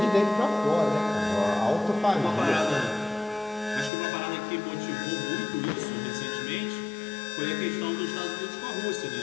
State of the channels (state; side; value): drops out; right; at 3.9 s